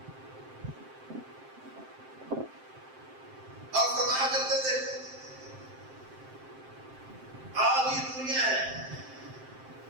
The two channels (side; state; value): left; late; 7.6 ms